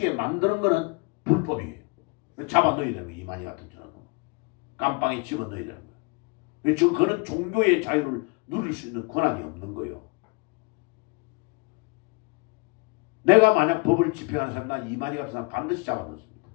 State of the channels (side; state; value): right; quieter; 30.0 dB